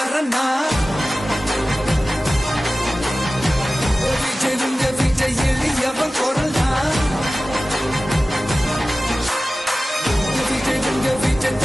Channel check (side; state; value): both; normal; correlation 0.96